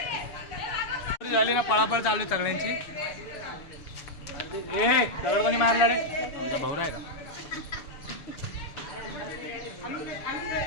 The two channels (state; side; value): late; right; 6.8 ms